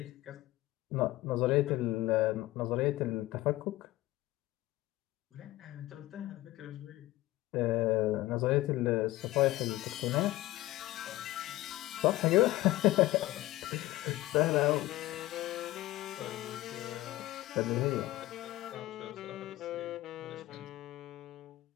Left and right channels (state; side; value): quieter; right; 17.3 dB